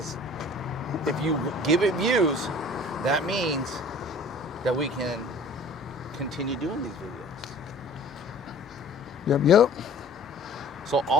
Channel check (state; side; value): normal; both; correlation 0.47